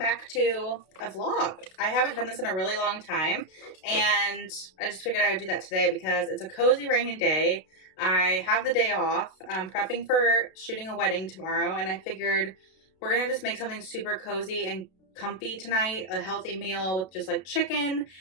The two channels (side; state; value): right; late; 32 ms